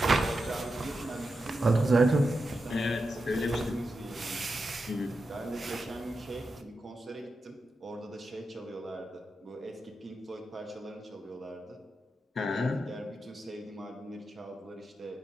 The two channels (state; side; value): normal; both; correlation 0.89